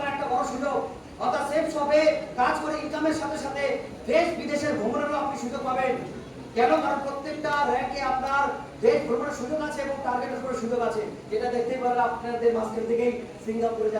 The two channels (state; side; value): identical; both; correlation 1.00